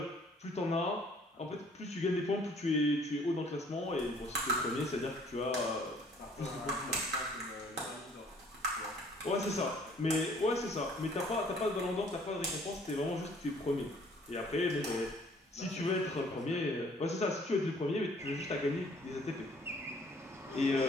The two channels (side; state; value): both; normal; correlation 0.58